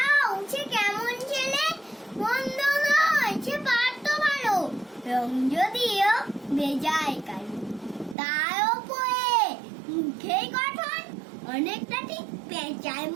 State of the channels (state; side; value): drops out; left; at 8.2 s